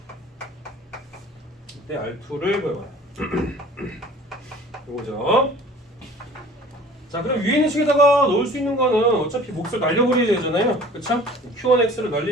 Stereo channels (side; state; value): both; normal; correlation 0.47